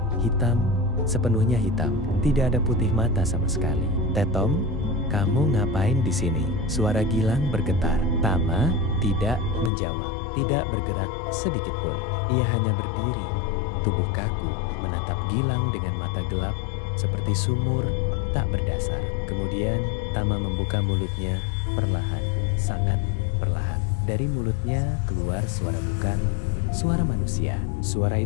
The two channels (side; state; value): right; drops out; at 9.7 s